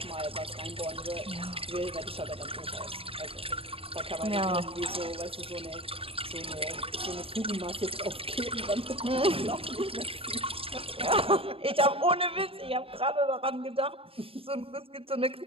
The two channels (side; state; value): left; late; 0.27 ms